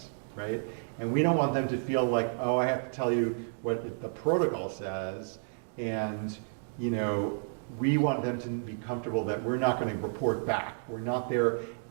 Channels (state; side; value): silent; left; digital silence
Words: right? And we don't want them to feel like, oh, I have to tell you what the protocol says, and we want them to be comfortable that we're not going to report back. We're not there